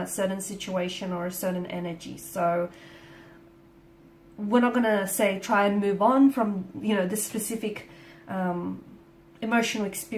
certain situation or a certain energy. So we're not going to say try and move on from, you know, this specific emotional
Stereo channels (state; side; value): identical; both; correlation 1.00